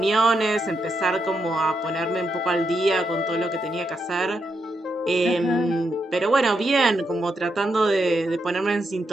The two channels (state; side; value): normal; both; correlation 0.82